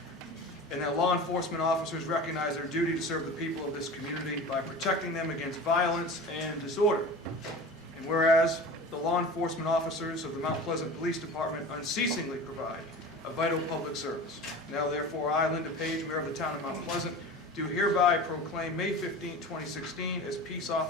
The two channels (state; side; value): normal; both; correlation 0.34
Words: and that law enforcement officers recognize their duty to serve the people of this community by protecting them against violence and disorder. And whereas the law enforcement officers of the Mount Pleasant Police Department unceasingly provide a vital public service. Now therefore, I, Linda Page, Mayor of the Town of Mount Pleasant, do hereby proclaim May 15, 2016 as Peace